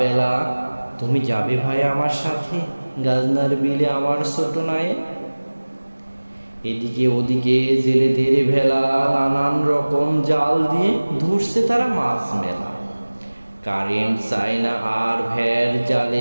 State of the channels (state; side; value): inverted; both; correlation -1.00